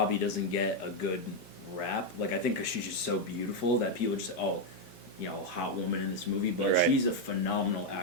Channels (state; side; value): normal; both; correlation 0.02